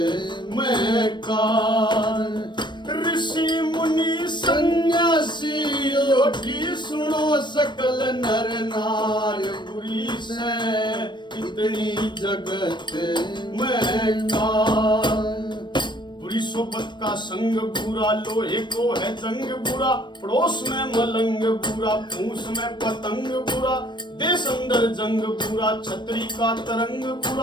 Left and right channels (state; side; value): late; right; 0.22 ms